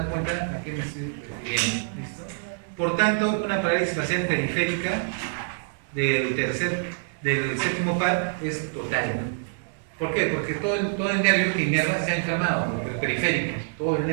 cuenta a qué me estoy refiriendo. ¿Listo? Por tanto, una parálisis facial periférica del séptimo par es total. ¿Por qué? Porque todo el nervio que inerva se ha inflamado, el periférico, todo el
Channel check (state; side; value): silent; left; digital silence